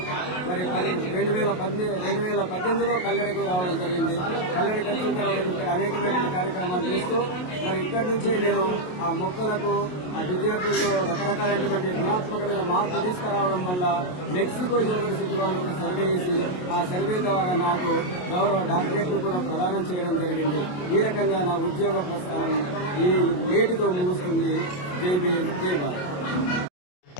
మరి 2018లో కల్లెడకు రావడం జరిగింది. కల్లెడకు వచ్చిన తర్వాత ఇక్కడ అనేకమైన కార్యక్రమాలు చేస్తూ మరి ఇక్కడి నుంచే నేను ఆ మొక్కలకు ఆ విద్యార్థుల్లో రకరకాలైనటువంటి గుణాత్మకమైన మార్పు తీసుకురావడం వల్ల మెక్సికో యూనివర్సిటీ వాళ్ళు ఒక సర్వే చేసి ఆ సర్వే ద్వారా నాకు గౌరవ డాక్టరేట్లు కూడా ప్రదానం చేయడం జరిగింది. ఈ రకంగా నా ఉద్యోగ ప్రస్థానం ఈ నేటితో ముగుస్తుంది. జై భీమ్, జై Bharat.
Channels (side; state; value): right; late; 28 ms